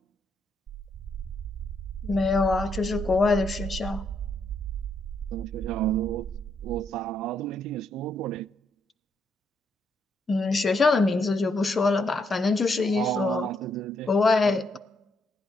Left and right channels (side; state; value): both; normal; correlation 0.76